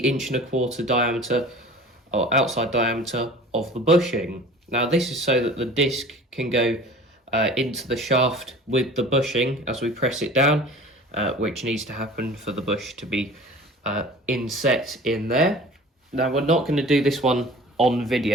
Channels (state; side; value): normal; both; correlation 0.43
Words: 1.25" diameter or outside diameter of the bushing. Now this is so that the disc can go into the shaft with the bushing as we press it down, which needs to happen for the bush to be inset in there. Now we're not going to do this one on